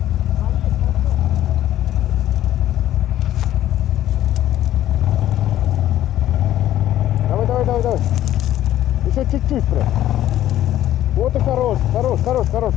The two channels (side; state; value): right; quieter; 12.9 dB